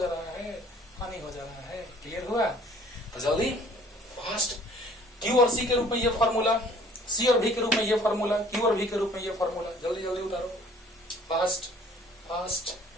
रहा है, हानि हो जा रहा है। क्लियर हुआ? तो जल्दी फास्ट, क्यू और सी के रूप में ये फॉर्मूला, सी और भी के रूप में ये फॉर्मूला, क्यू और भी के रूप में ये फॉर्मूला, जल्दी जल्दी उतारो, फास्ट फास्ट,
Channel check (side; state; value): both; normal; correlation 0.54